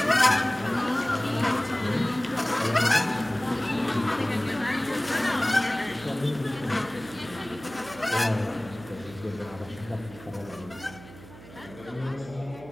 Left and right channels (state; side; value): noise; right; hum, 18 dB below the sound